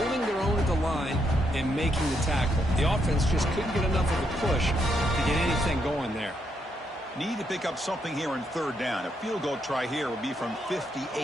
their own at the line and making the tackle. The offense just couldn't get enough of a push to get anything going there. Need to pick up something here in third down. A field goal try here would be from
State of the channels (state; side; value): normal; both; correlation 0.78